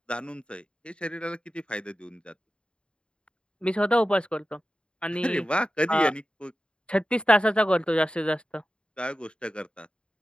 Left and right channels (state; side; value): late; right; 0.054 ms